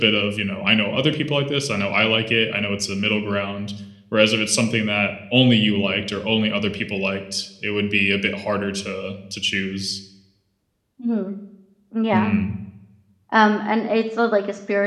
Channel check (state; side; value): identical; both; correlation 1.00